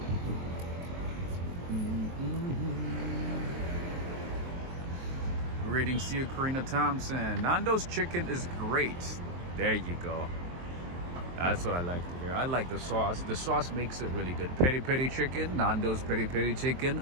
Greetings to you, Karina Thompson. Nando's chicken is great. There you go. That's what I like to hear. I like the sauce. The sauce makes it really good. Peri peri chicken. Nando's peri peri chicken.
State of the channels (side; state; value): left; late; 23 ms